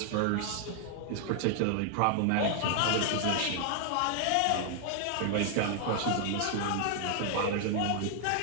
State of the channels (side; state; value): both; different; correlation 0.00